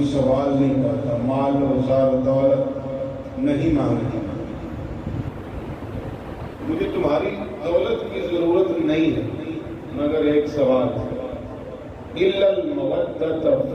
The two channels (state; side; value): identical; both; correlation 1.00